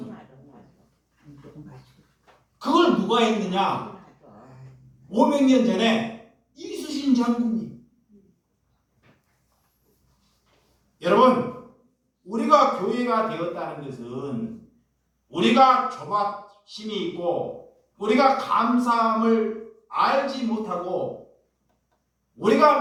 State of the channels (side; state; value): both; identical; correlation 1.00